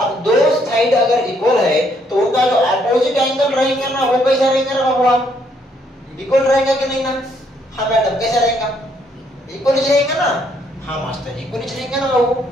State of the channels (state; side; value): normal; both; correlation 0.70